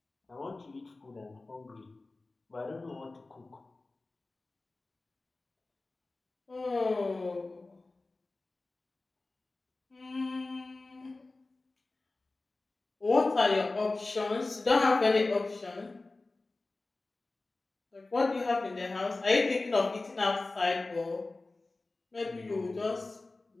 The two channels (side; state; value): right; quieter; 3.3 dB